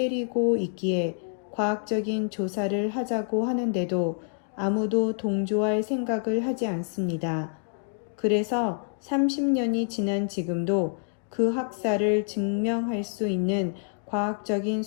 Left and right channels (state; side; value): silent; right; digital silence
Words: 있기에 과학적인 조사를 하자고 하는데도 아무도 동조할 생각을 하지 않습니다. 그래서 30년이 지난 지금도 그 학살을 증명할 수 있는 과학적인